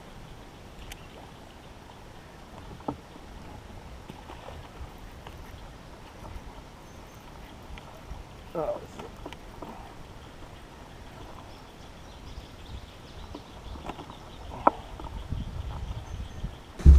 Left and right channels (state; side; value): identical; both; correlation 1.00